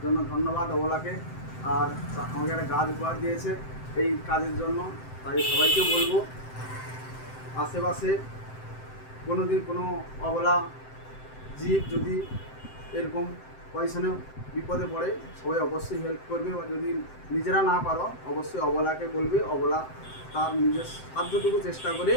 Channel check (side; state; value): right; late; 7.8 ms